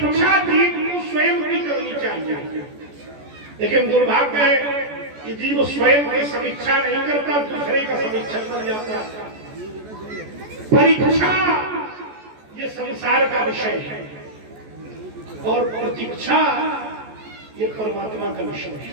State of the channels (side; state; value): left; late; 14 ms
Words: जीव को स्वयं की करनी चाहिए, लेकिन दुर्भाग्य है कि जीव स्वयं की समीक्षा नहीं करता, दूसरे का समीक्षा कर जाता है। परीक्षा ये संसार का विषय है और प्रतीक्षा ये परमात्मा का विषय है।